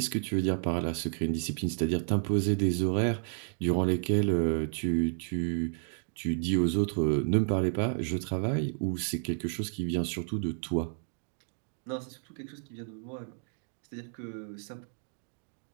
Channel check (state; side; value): silent; left; digital silence